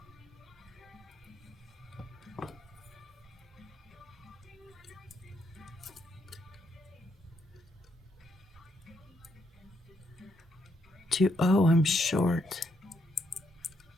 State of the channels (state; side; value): normal; both; correlation 0.76